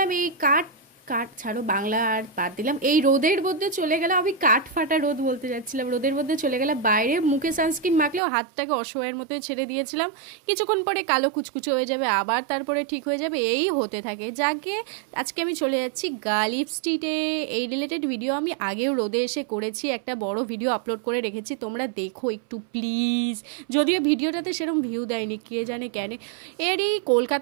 এই কাঠ কাঠ ছাড়ো, বাংলা আর বাদ দিলাম। এই রোদের মধ্যে চলে গেলাম, আমি কাঠ ফাটা রোদ বলতে যাচ্ছিলাম, রোদের মধ্যে চলে গেলাম বাইরে। মুখে সানস্ক্রিন মাখলেও হাতটাকে অসহায়ের মতোই ছেড়ে দিয়েছিলাম। কিছুক্ষণ পরে কালো কুচকুচো হয়ে যাবে, আবার তারপরে ঠিক হয়ে যাবে, এই হতে থাকে। যাকে আজকে আমি চলে যাচ্ছি গালিব স্ট্রিটে। এই রিলেটেড ভিডিও আমি আগেও রোদে এসে করেছি, একটা বড় ভিডিও আপলোড করে রেখেছি, তোমরা দেখো একটু প্লিজ। যদিও ভিডিওটাতে সেরকম ভিউ দেয়নি, কে জানে কেন। এরই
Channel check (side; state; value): left; drops out; at 8.2 s